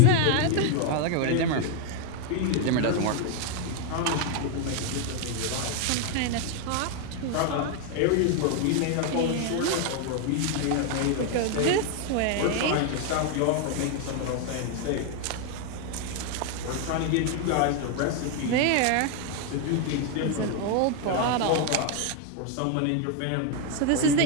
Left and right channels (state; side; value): different; both; correlation 0.01